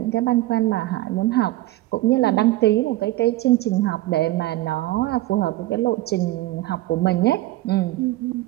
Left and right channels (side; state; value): left; quieter; 17.2 dB